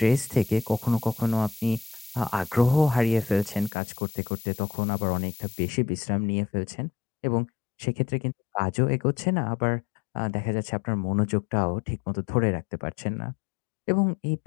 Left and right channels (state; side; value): drops out; right; at 3.7 s